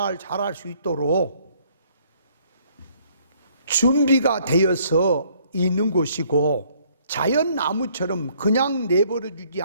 자랄 수 있도록 준비가 되어서 있는 곳이고, 자연나무처럼 그냥 내버려 주지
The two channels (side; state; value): both; inverted; correlation -0.63